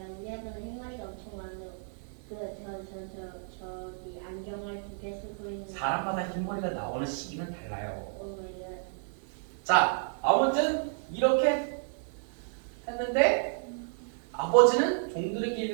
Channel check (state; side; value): silent; left; 57 dB below the other